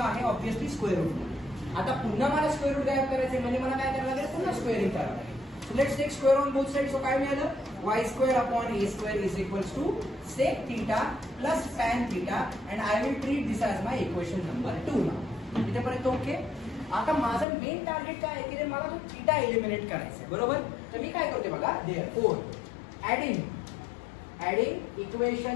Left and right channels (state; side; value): drops out; right; at 17.4 s